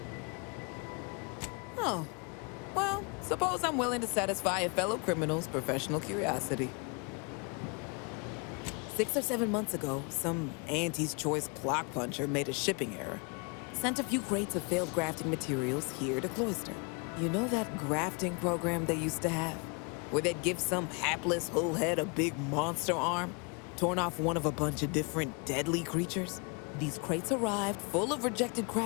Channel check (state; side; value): quieter; right; 33.6 dB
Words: Oh. Well, suppose I'm willing to satisfy a fellow criminal's professional curiosity. 6 or 7 months ago, some Auntie's Choice clock puncher made a shipping error. Sent a few crates of failed grafting materials here to Cloister. You know that grafting program they used to have? Where they'd give some hapless hullhead a big monster arm, torn off one of a bunch of different deadly creatures? These crates arrived full of rejected